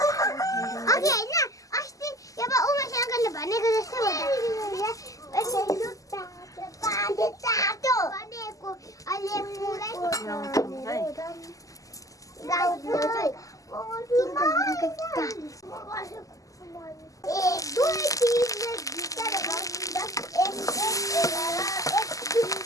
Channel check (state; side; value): late; right; 0.16 ms